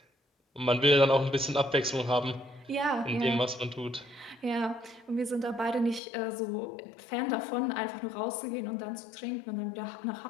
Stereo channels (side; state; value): right; drops out; at 6.0 s